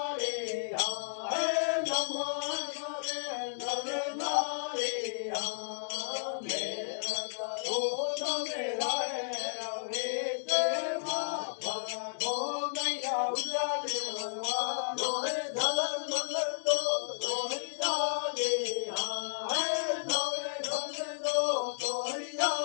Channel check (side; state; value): right; silent; digital silence